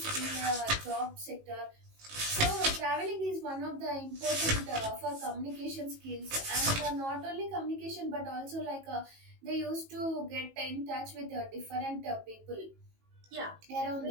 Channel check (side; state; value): left; late; 18 ms